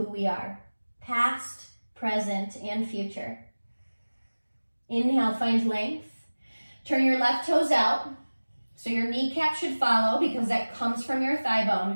we are, past, present, and future. Inhale, find length. Turn your left toes out. So your kneecap should follow because that comes from your thigh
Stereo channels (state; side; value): inverted; both; correlation -1.00